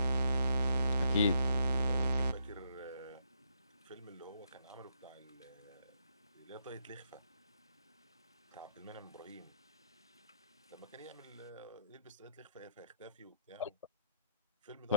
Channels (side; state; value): both; inverted; correlation -0.76